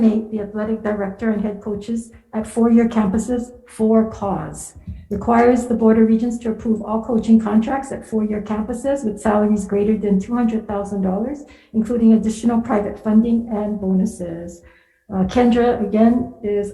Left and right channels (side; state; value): both; identical; correlation 1.00